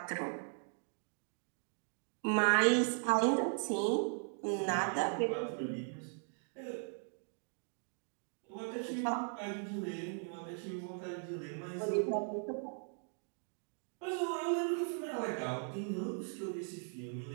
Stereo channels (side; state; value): left; silent; 52 dB below the other